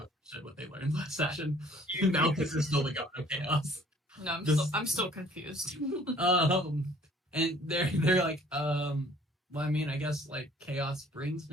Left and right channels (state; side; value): normal; both; correlation 0.55